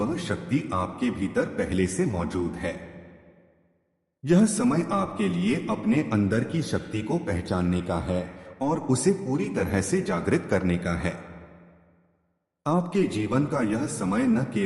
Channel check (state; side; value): identical; both; correlation 1.00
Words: शक्ति आपके भीतर पहले से मौजूद है। यह समय आपके लिए अपने अंदर की शक्ति को पहचानने का है और उसे पूरी तरह से जागृत करने का है। आपके जीवन का यह समय न